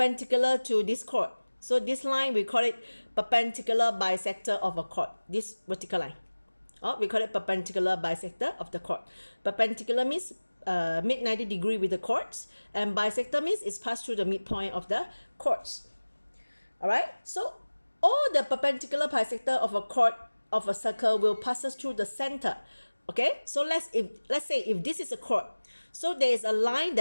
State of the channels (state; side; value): inverted; both; correlation -1.00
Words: to this chord. So this line, we call it perpendicular bisector of a chord, this vertical line. We call it perpendicular bisector of the chord. Perpendicular means mid 90 degree with the chords, and bisector means it's passed through the midpoint of the chords. All right, so all the perpendicular bisector of a chord of a circle will pass through the center. Okay, so let's say if this is a chord, so there is a line